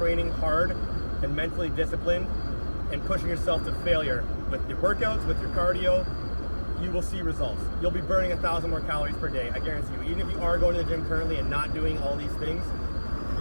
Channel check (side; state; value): both; inverted; correlation -1.00